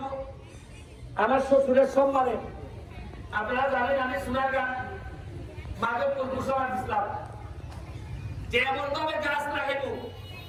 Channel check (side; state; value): both; identical; correlation 1.00